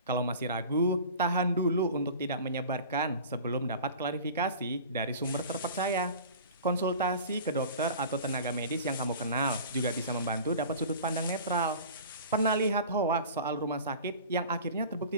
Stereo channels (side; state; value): both; inverted; correlation -0.39